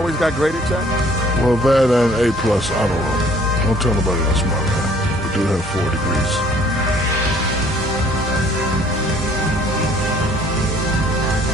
got graded, Jack? Well, that and A plus, I don't know. Don't tell nobody else about that. We do have 4 degrees.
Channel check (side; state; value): both; normal; correlation 0.57